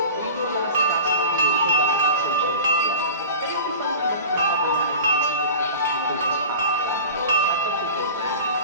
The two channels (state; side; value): inverted; both; correlation -0.35